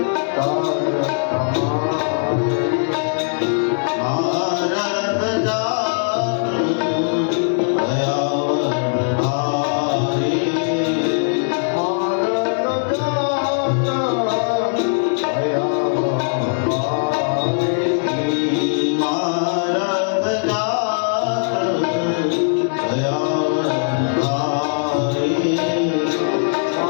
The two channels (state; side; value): silent; right; digital silence